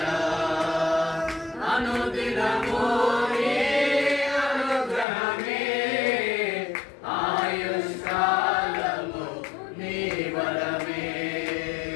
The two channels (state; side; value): drops out; right; at 5.1 s